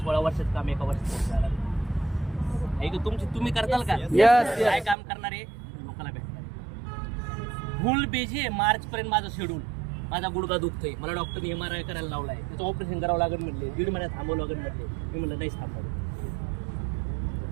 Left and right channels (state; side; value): drops out; left; at 5.0 s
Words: वर्षात काम एका वर्षात झालं. आहे का तुम्ही करताल का? Yes. काय काम करणार आहे? लोकांना भेटणार. फुल बिझी आहे मार्च पर्यंत माझं शेड्यूल. माझा गुडघा दुखतोय, मला डॉक्टरने MRI करायला लावलाय, त्याचं ऑपरेशन करावं लागेल म्हणले, 1.5 महिन्यात थांबवं लागेल म्हणले. मी म्हणलं नाही थांबवलं.